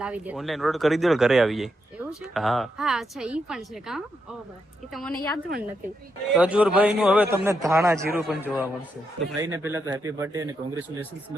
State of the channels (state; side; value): normal; both; correlation 0.82